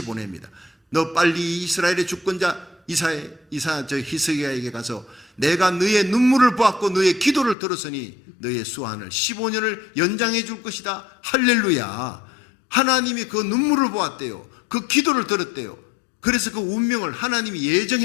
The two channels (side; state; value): right; drops out; at 7.6 s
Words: 보냅니다. 너 빨리 이스라엘의 주권자 히스기야에게 가서 내가 너의 눈물을 보았고 너의 기도를 들었으니 너의 수한을 15년을 연장해 줄 것이다. 할렐루야. 하나님이 그 눈물을 보았대요. 그 기도를 들었대요. 그래서 그 운명을, 하나님이